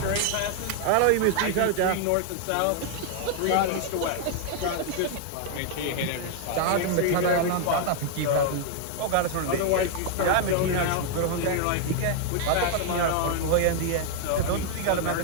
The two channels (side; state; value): both; different; correlation 0.00